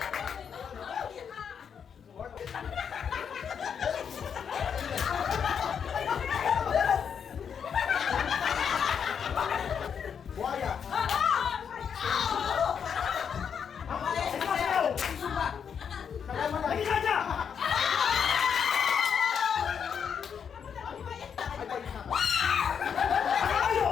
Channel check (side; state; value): right; quieter; 7.3 dB